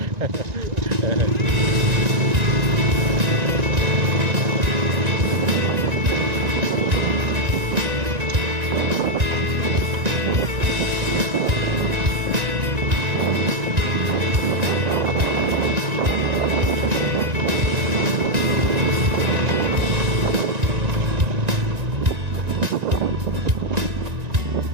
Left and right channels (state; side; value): late; left; 1.9 ms